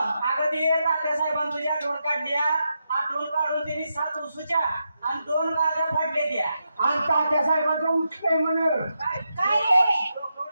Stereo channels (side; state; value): both; inverted; correlation -0.85